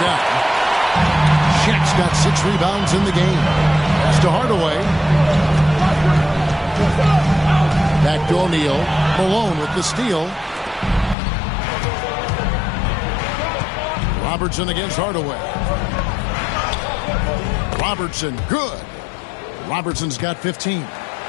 Shaq's got 6 rebounds in the game. Pass to Hardaway. Back to O'Neal. Malone with the steal. Robertson against Hardaway. Robertson, good. Robertson's got 15.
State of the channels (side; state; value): right; drops out; at 11.2 s